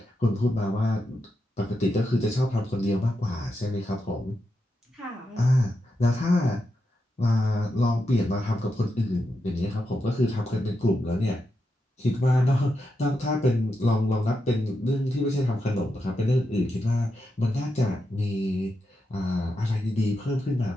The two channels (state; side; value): normal; both; correlation 0.86